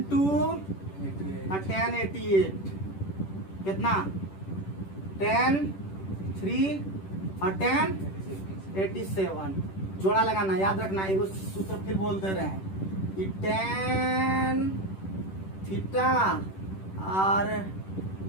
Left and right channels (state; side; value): late; right; 10 ms